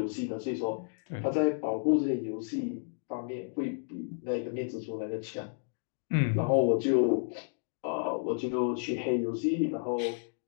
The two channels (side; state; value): right; silent; digital silence